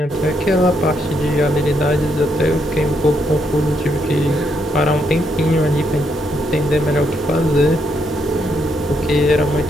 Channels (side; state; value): both; normal; correlation 0.76